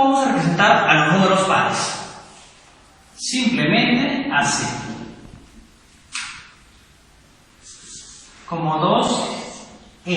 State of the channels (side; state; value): both; identical; correlation 1.00